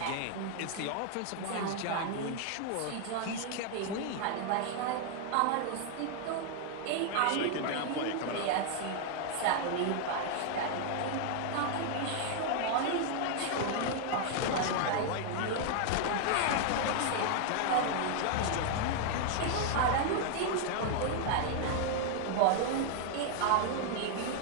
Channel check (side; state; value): both; different; correlation 0.00